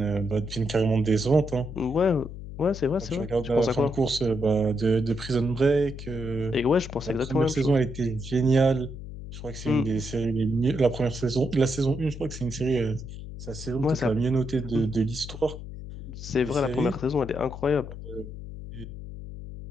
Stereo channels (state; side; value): noise; left; hum, 11 dB below the sound